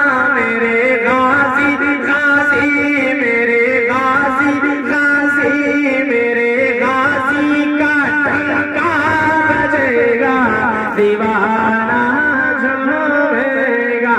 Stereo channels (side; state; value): both; identical; correlation 1.00